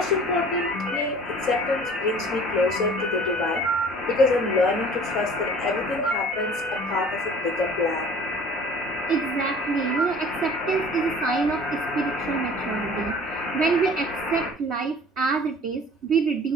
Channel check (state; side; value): normal; both; correlation 0.47